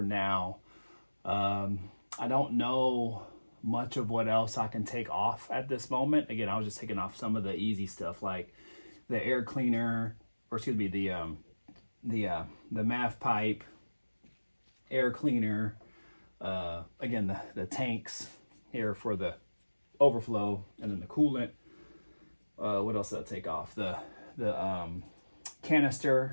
now. I don't know much of what else I can take off at this moment. Again, I was just taking off some of the easy stuff like the air cleaner, or excuse me, the MAF pipe, air cleaner, again, the tanks here for the overflow, and then the coolant. What else did I take off? The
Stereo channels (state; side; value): inverted; both; correlation -1.00